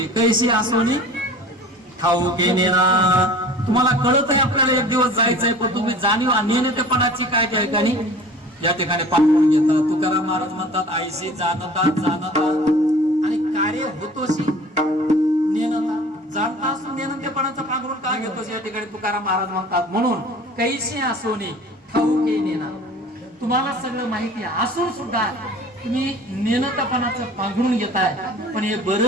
कैशी आसोनी ठाऊके नेना. तुम्हाला कळत आहे आपल्याला एक दिवस जायचंय, पण तुम्ही जाणीव नेणतेपणाची काय त्या ठिकाणी या ठिकाणी पांघरून घेता. तुकाराम महाराज म्हणतात आईशी जाणता आणि कार्य होतोशी नेनता. जाणता असून नेणतेपणाचं पांघरून का घेतोस या ठिकाणी तुकाराम महाराज म्हणतात. म्हणून कैशी आसोनी ठाऊके नेना. तुम्हाला सगळं माहिती असून सुद्धा तुम्ही नेणतेपणाचं पांघरून घेताय, पण हे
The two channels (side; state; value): both; normal; correlation 0.43